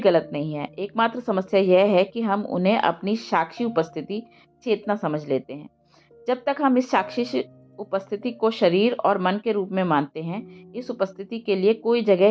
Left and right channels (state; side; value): identical; both; correlation 1.00